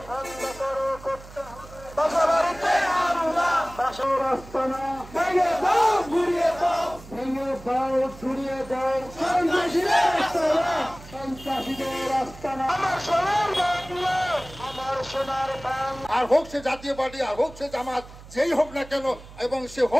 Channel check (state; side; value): noise; right; hum, 18 dB below the sound